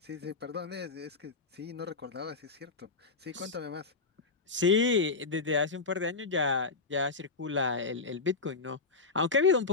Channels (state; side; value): quieter; right; 4.1 dB